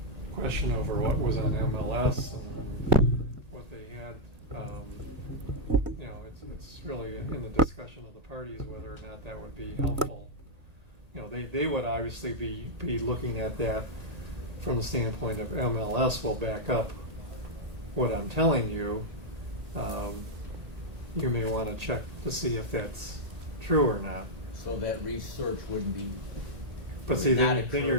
question over what was on MLS and what they had, it's really in the discussion of the parties whether or not that would be helpful. They would obviously be looking at that from the standpoint of MLS will back up what I'm telling you. You may want to check to see if that's true or not. So that research wouldn't be. But see, would not then you're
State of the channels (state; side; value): late; left; 1.8 ms